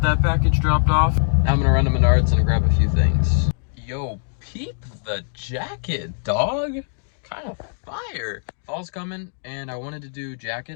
that package dropped off. Now I'm gonna run to Menards and grab a few things. Yo, peep the jacket, dog. Kind of fire. Fall's coming and I wanted to do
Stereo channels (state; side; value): silent; right; digital silence